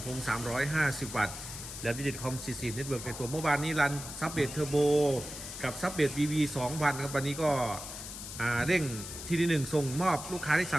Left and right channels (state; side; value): noise; left; hiss, 10 dB below the sound